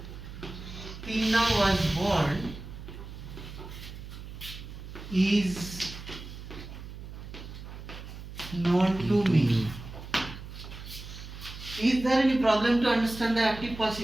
Tinna was born is known to me. Is there any problem to understand the active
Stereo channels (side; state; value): right; noise; hum, 12 dB below the sound